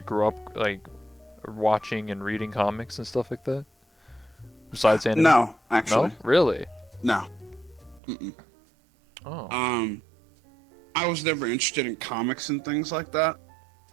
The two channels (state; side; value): drops out; left; at 8.0 s